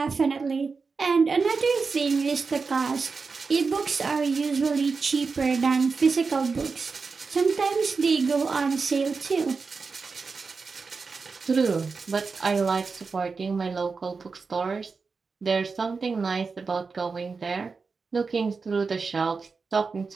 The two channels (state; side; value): quieter; left; 4.7 dB